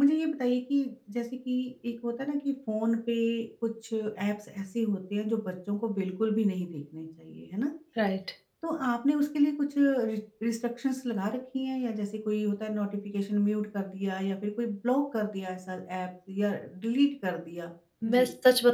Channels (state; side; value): identical; both; correlation 1.00